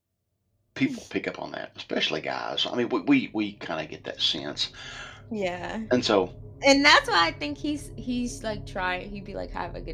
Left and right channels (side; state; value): both; identical; correlation 1.00